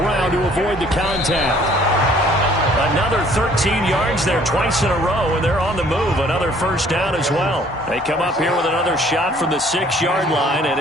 to avoid the contact. Another 13 yards there twice in a row, and they're on the move. Another first down as well. They come up here with another shot from the 6-yard line, and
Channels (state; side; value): normal; both; correlation 0.58